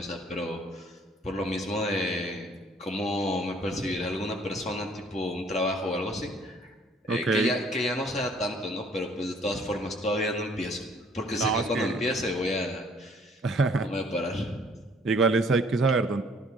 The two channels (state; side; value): normal; both; correlation 0.59